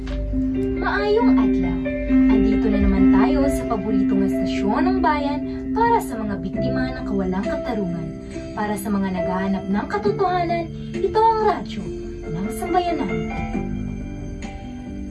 Maayong adlaw! Andito na naman tayo sa paboritong estasyon ng bayan para sa mga biktima ng kawalang katarungan. Para sa mga naghahanap ng katotohanan, ito ang radyo ng sambayanan.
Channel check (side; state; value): both; identical; correlation 1.00